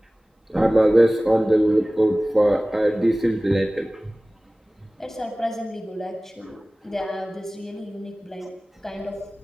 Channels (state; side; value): normal; both; correlation 0.98